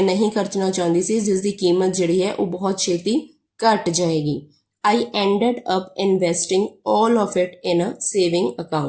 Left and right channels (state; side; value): identical; both; correlation 1.00